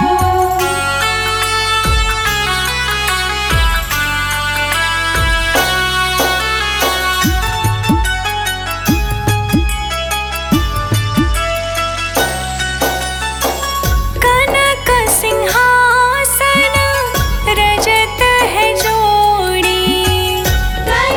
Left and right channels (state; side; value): identical; both; correlation 1.00